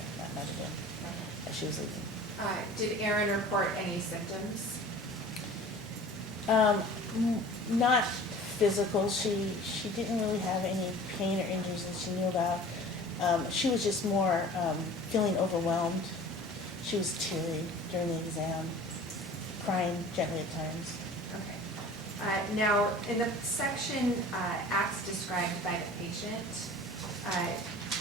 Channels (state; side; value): normal; both; correlation 0.43